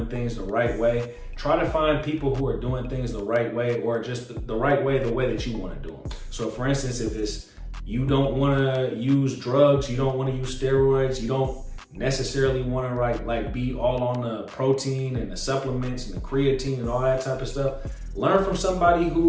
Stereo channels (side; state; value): both; identical; correlation 1.00